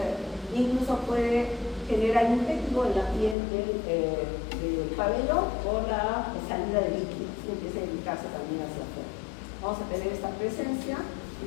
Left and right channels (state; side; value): drops out; right; at 3.4 s